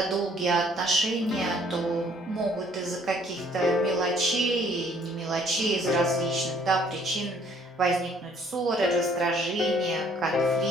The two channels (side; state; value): both; normal; correlation 0.61